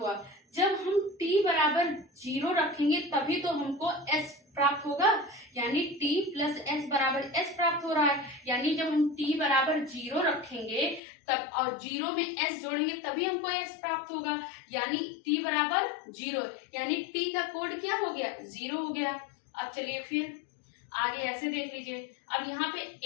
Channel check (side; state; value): right; drops out; at 11.0 s